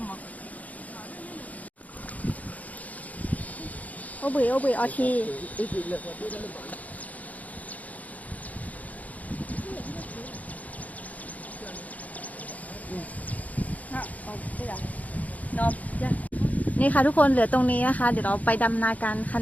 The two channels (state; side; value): late; right; 0.074 ms